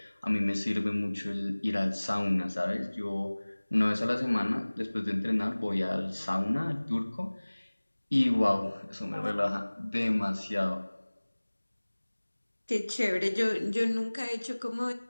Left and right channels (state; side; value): inverted; both; correlation -1.00